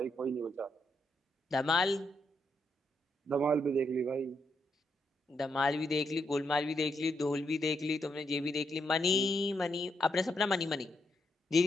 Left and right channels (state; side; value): normal; both; correlation 0.79